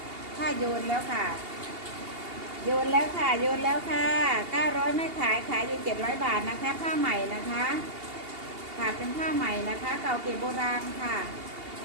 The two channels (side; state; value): left; late; 2.8 ms